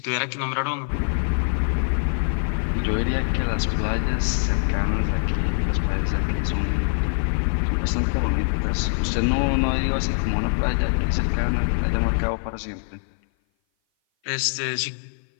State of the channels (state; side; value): silent; right; 57 dB below the other